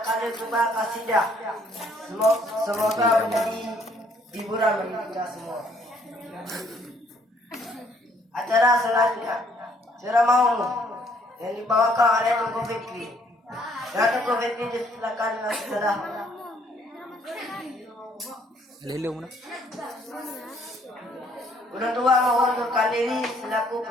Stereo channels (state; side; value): normal; both; correlation 0.64